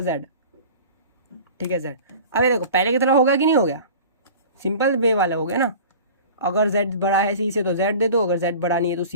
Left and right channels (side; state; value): both; inverted; correlation -0.40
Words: जेड, ठीक है जेड। अब ये देखो पहले की तरह होगा कि नहीं हो गया, सिंपल वे वाला हो गया ना। अगर z बड़ा है सी से तो z दे दो, अगर z बड़ा नहीं है तो